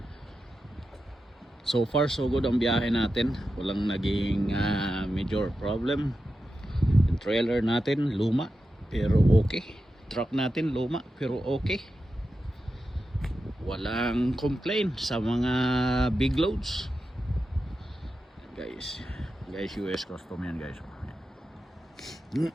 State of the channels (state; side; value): normal; both; correlation 0.90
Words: So far so good ang biyahe natin. Walang naging major problem. Yung trailer natin luma pero okay. Truck natin luma pero okay. Walang complaint sa mga big loads. Guys, US custom yan guys.